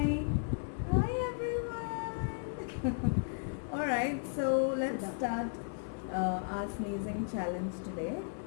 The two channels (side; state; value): right; silent; digital silence